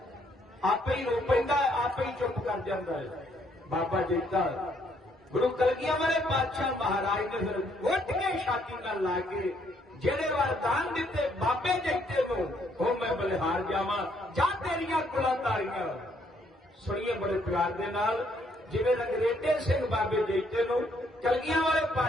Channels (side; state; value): both; normal; correlation 0.70